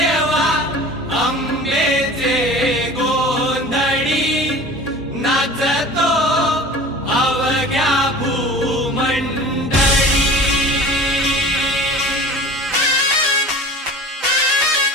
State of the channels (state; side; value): normal; both; correlation 0.40